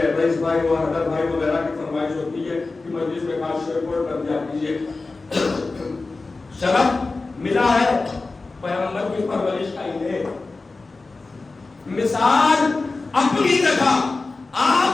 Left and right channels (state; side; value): quieter; right; 3.6 dB